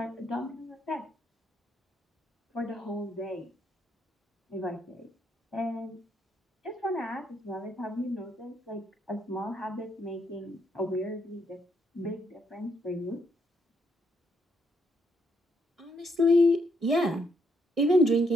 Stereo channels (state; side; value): normal; both; correlation 0.75